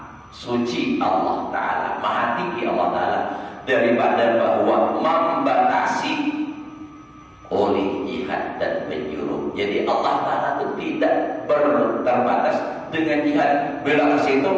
suci Allah Ta'ala, maha tinggi Allah Ta'ala daripada bahwa membatasi oleh jihad dan penjuru. Jadi Allah Ta'ala itu tidak terbatas dengan jihad. Bila ke situ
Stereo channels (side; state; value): both; identical; correlation 1.00